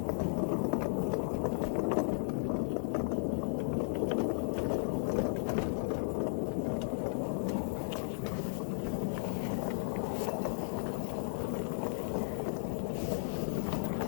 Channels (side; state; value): right; silent; digital silence